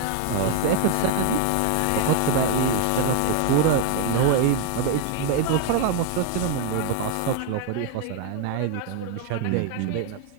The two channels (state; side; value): different; both; correlation 0.00